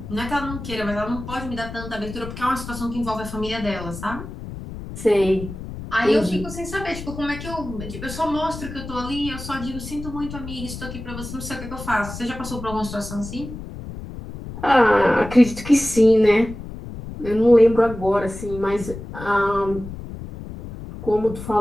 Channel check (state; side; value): noise; left; rumble, 10 dB below the sound